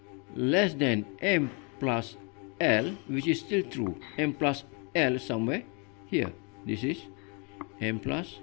less than m plus l, which is still true, m plus l somewhere here, this is m plus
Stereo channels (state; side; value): quieter; right; 34.1 dB